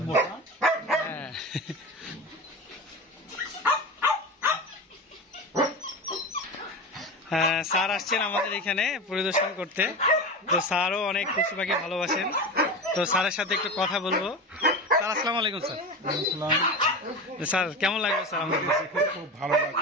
মোটা। স্যার আসছেন আমাদের এখানে পরিদর্শন করতে, তো স্যারও অনেক পশু পাখি ভালোবাসেন, তো স্যারের সাথে একটু কথা বলবো। স্যার আসসালামু আলাইকুম। স্যার স্যার কেমন লাগলো? স্যার আমাদের খুব ভালো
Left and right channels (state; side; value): normal; both; correlation 0.25